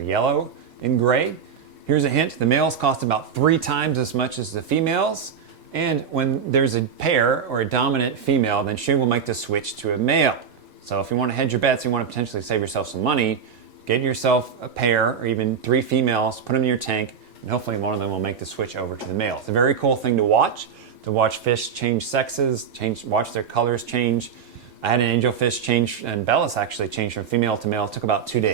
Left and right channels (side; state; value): left; quieter; 7.0 dB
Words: yellow and gray. Here's a hint. The males cost about 3 times as much as the females. And when there's a pair or a dominant female, then she will make the switch to a male. So if you want to hedge your bets, you want to potentially save yourself some money, get yourself a pair or even 3 females, put them in your tank, and hopefully one of them will make the switch over to the male. It's a very cool thing to watch fish change sexes, watch their colors change. I had an angelfish change, and Bellis actually changed from female to male. It took about 2